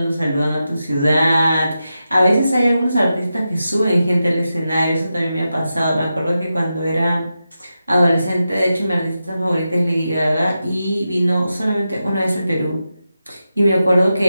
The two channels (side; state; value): both; inverted; correlation -0.90